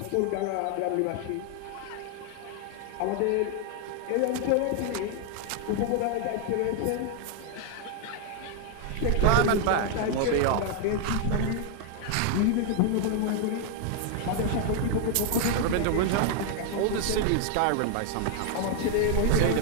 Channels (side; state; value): both; different; correlation 0.00